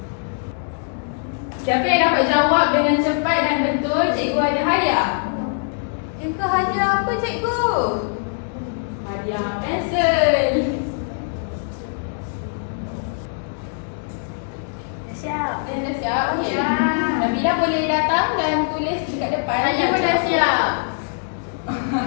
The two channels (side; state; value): right; silent; digital silence